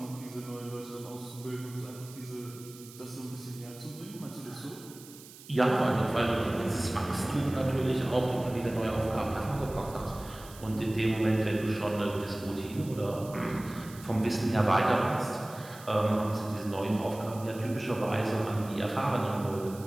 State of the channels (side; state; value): right; noise; hiss, 18 dB below the sound